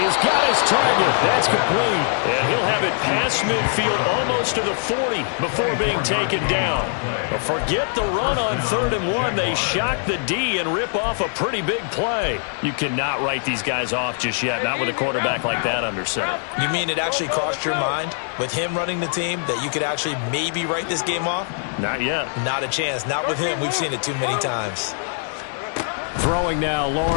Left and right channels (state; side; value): silent; right; digital silence